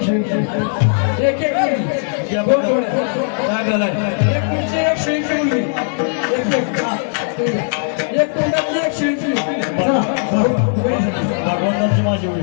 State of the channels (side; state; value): right; silent; 68 dB below the other